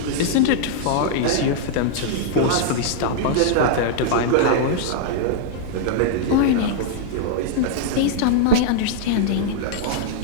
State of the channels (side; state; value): both; different; correlation -0.01